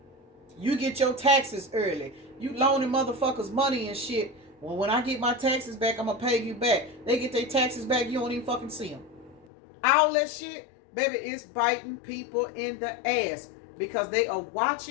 you get your taxes early. You loaning motherfuckers money and shit. Well, when I get my taxes back, I'm going to pay you back. They get their taxes back, you don't even fucking see them. All that shit, baby, is biting people in the ass. Because they are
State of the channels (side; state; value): right; drops out; at 9.5 s